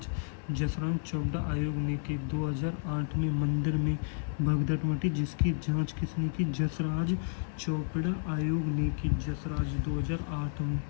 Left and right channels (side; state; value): right; silent; digital silence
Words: जसराज चोपड़ा आयोग ने की। 2008 में मंदिर में भगदड़ मची जिसकी जांच किसने की? जसराज चोपड़ा आयोग ने की। जसराज 2008 में